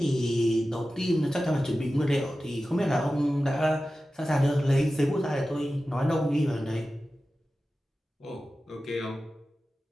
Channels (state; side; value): normal; both; correlation 0.94